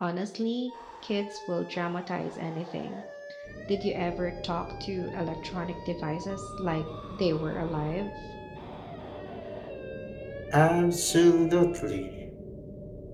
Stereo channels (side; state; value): both; identical; correlation 1.00